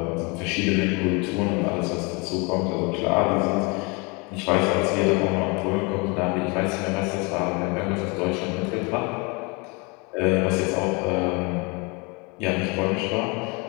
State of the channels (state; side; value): quieter; right; 29.4 dB